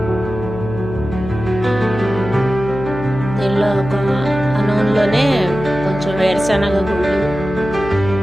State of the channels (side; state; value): left; noise; hum, 9 dB below the sound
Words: దీనిలో ఆ నూనెలోనే కొంచెం వేరుశనగ గుళ్ళు,